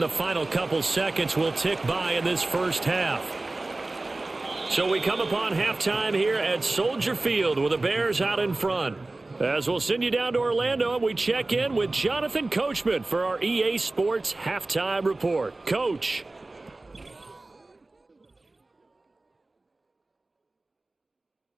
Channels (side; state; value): left; quieter; 3.0 dB